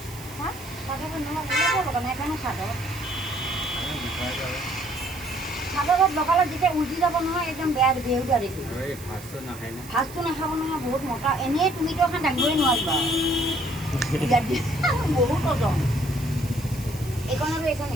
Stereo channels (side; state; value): right; noise; hiss, 17 dB below the sound